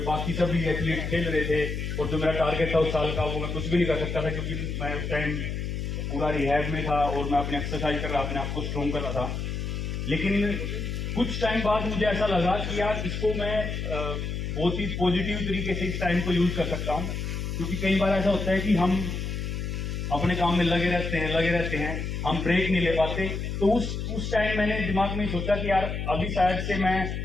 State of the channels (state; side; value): noise; left; hum, 3 dB below the sound